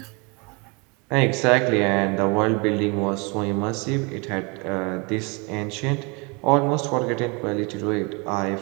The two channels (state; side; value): quieter; left; 30.0 dB